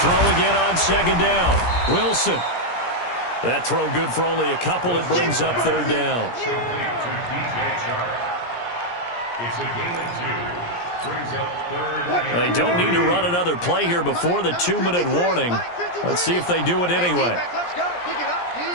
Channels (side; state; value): right; late; 17 ms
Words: again on second down. Wilson. That throw good for only a couple. It brings up third down. It's a gain of 2. Brings up third. They don't need to run another play here before the 2-minute warning. Let's see if they do it anyway.